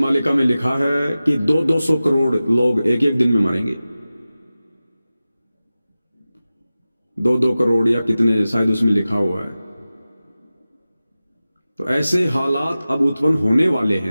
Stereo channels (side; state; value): both; inverted; correlation -0.95